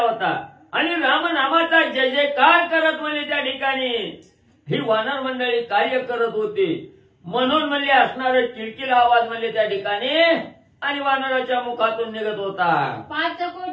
आणि रामनामाचा जय जयकार करत म्हणजे त्या ठिकाणी ही वानर मंडळी कार्य करत होती. म्हणून म्हणजे असणारं किलकिल आवाज म्हणजे त्या ठिकाणी आणि वानराच्या मुखातून निघत होता. 5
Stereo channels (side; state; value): both; identical; correlation 1.00